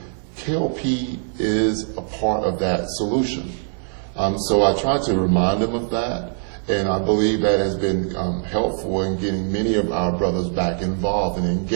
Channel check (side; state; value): left; silent; 64 dB below the other